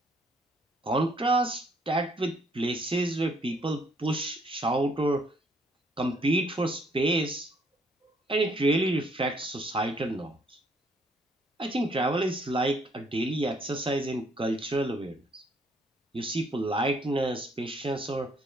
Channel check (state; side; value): normal; both; correlation 0.66